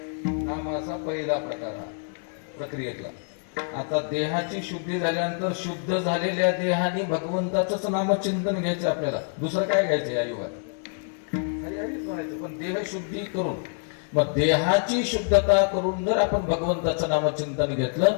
नामाचा पहिला प्रकार हा प्रक्रियेतला. आता देहाची शुद्धी झाल्यानंतर शुद्ध झालेल्या देहाने भगवंताचंच नामचिंतन घ्यायचं आपल्याला, दुसरं काय घ्यायचं या युगात? हरी हरीच म्हणायचं. पण देह शुद्धी करून, मग देहाची शुद्धता करून जर आपण भगवंताचं नामचिंतन घेतलं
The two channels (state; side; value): silent; right; 61 dB below the other